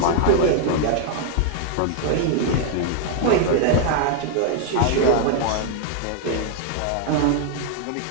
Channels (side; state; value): both; different; correlation 0.00